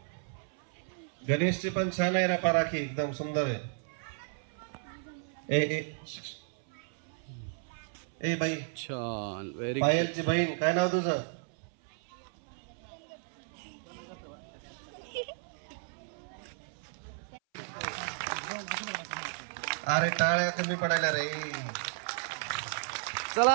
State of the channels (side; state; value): left; silent; 56 dB below the other